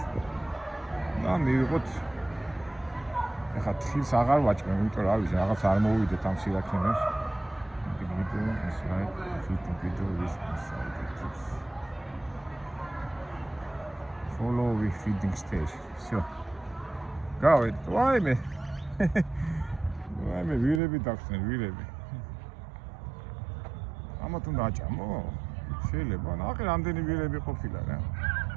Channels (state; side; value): drops out; left; at 20.8 s